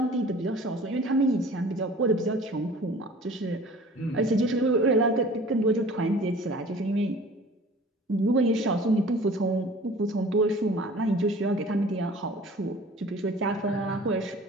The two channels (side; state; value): both; normal; correlation 0.46